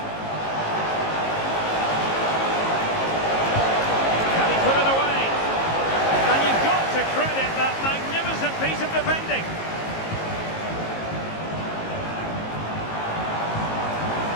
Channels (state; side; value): late; right; 19 ms